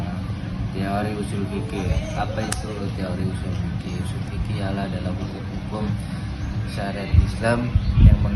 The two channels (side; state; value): both; identical; correlation 1.00